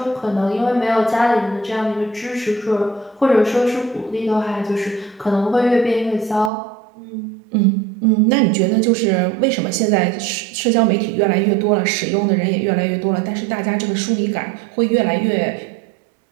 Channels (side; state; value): left; drops out; at 6.5 s